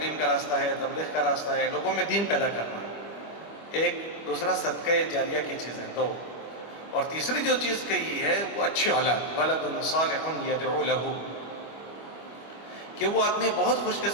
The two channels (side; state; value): right; late; 25 ms